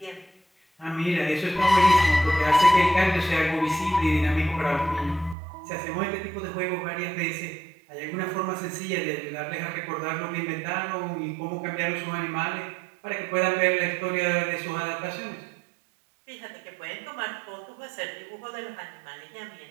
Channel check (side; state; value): left; drops out; at 5.4 s